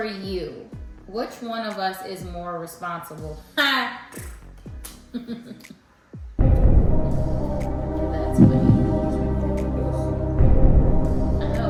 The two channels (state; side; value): identical; both; correlation 1.00